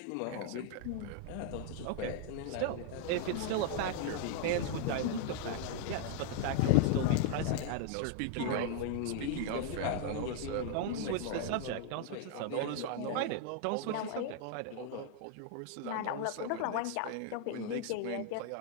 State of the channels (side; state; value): both; different; correlation 0.00